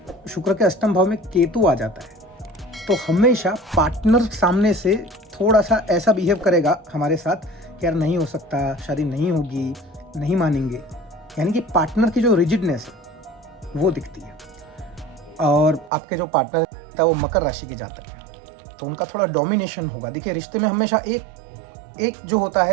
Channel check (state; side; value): drops out; left; at 15.9 s